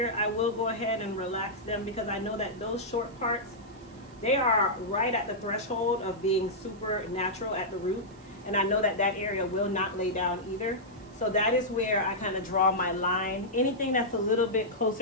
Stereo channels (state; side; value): noise; right; hiss, 27 dB below the sound